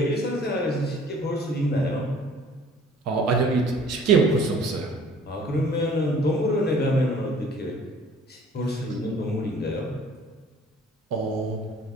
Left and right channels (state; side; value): normal; both; correlation 0.52